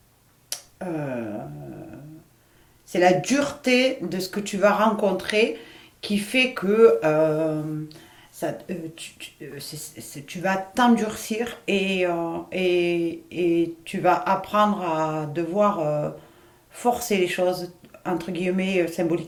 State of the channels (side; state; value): both; identical; correlation 1.00